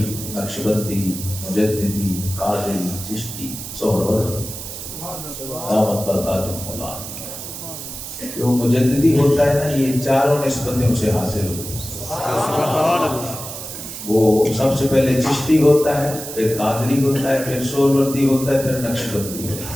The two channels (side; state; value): right; noise; hiss, 9 dB below the sound